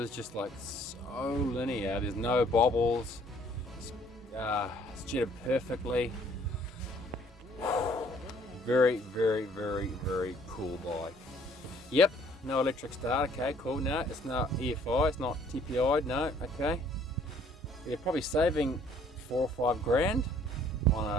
just like so linear. There's no bobbles. It's jetted perfectly. Very, very, very, very cool bike. Yep, no electric start. Okay, cool. No, it's not EFI. It's not TPI. No, okay. You're probably saving 4 or 5 grand on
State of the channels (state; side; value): normal; both; correlation 0.60